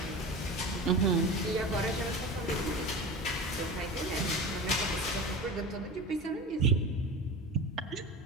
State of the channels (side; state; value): both; normal; correlation 0.30